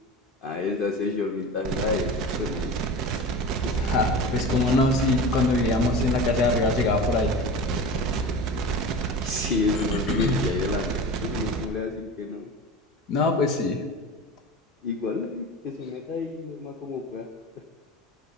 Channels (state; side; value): normal; both; correlation 0.32